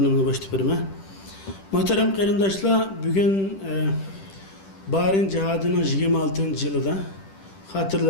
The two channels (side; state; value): right; late; 10 ms